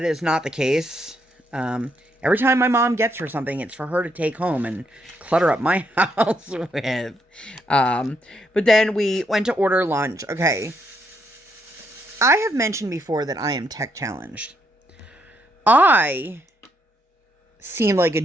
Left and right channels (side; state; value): both; normal; correlation 0.76